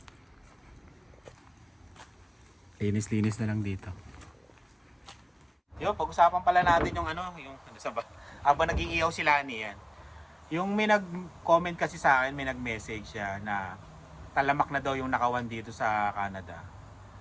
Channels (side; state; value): both; identical; correlation 1.00